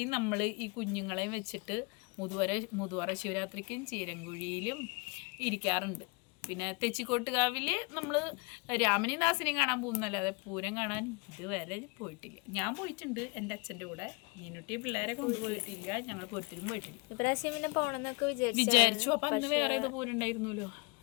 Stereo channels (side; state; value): right; quieter; 30.5 dB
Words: നമ്മൾ ഈ കുഞ്ഞുങ്ങളെയും വെച്ചിട്ട് മുതുവറ ശിവരാത്രിക്കും ചീരങ്കുഴിയിലും ഇരിക്കാറുണ്ട്. പിന്നെ തെച്ചിക്കോട്ടുകാവിൽ നമ്മൾ രാമനെയും ദാസനെയും കാണാൻ പോകുന്നല്ലാതെ പൂരം കാണാൻ ഇതുവരെ പോയിട്ടില്ല. ഞാൻ പോയിട്ടുണ്ട് എൻ്റെ അച്ഛൻ്റെ കൂടെ, മീനുട്ടി പിള്ളേരെ കൊണ്ടുപോയിട്ടില്ല. ഞങ്ങൾ പൂരത്തിലും പോയിട്ടില്ല. വിചാരിച്ചു. അപ്പം അന്ന് വേറെ ഏതോ പൂരം ഉണ്ടായിരുന്നല്ലോ,